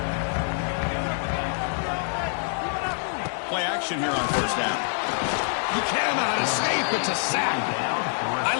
Play action here on first down. You cannot escape. It's a sack. I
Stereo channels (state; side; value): silent; right; digital silence